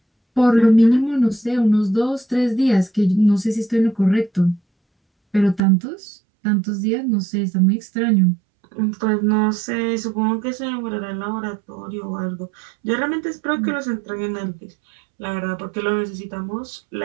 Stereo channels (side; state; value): left; drops out; at 5.6 s